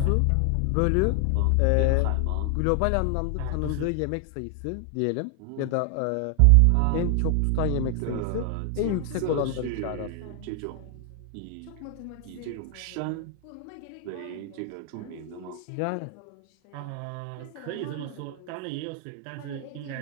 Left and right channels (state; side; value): different; both; correlation 0.00